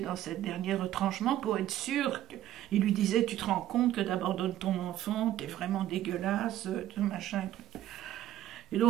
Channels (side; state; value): left; quieter; 12.9 dB